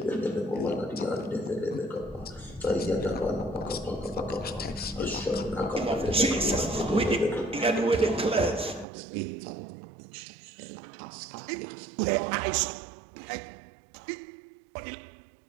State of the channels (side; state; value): left; drops out; at 8.8 s